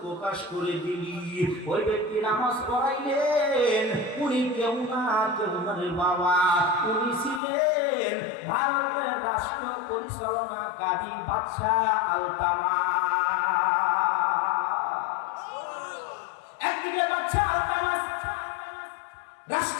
প্রকাশ করে দিলি। ওই ব্যক্তি নামাজ পড়াইলেন, উনি কেউ না কেউ না রে বাবা, উনি ছিলেন ভারতের রাষ্ট্র পরিচালনাকারী বাদশাহ আলতামাস। একদিকে বাদশাহ আলতামাস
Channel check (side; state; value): right; drops out; at 7.4 s